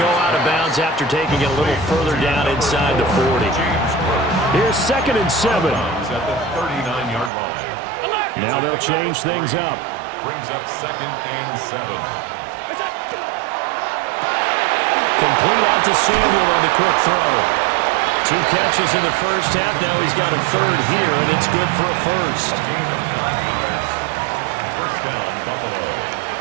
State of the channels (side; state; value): left; drops out; at 7.3 s